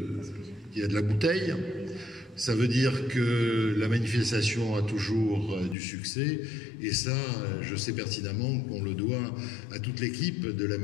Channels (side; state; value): right; drops out; at 5.8 s